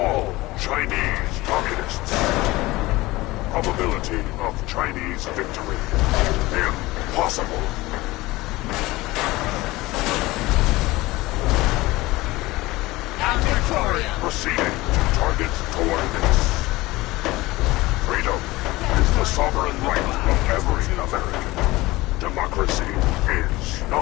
Chinese communists. Probability of Chinese victory: impossible. Proceeding to target coordinates. Freedom is the sovereign right of every American. Democracy is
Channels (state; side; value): quieter; right; 19.8 dB